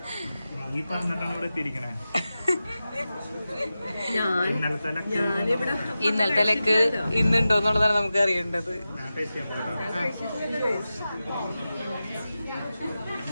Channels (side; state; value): both; inverted; correlation -0.93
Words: ഇന്നലത്തെ ലെക്ക് ഇന്നുണ്ടോ എന്നുള്ളതാണ് നമുക്ക് അറിയേണ്ടത്.